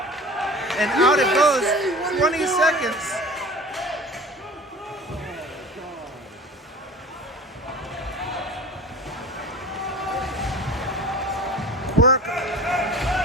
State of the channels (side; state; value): both; normal; correlation 0.39